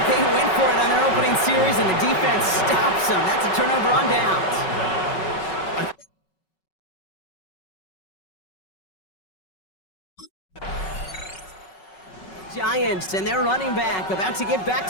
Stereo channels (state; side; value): late; right; 5.3 ms